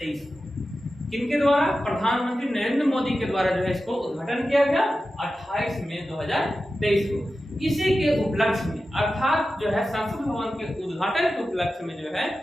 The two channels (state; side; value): normal; both; correlation 0.93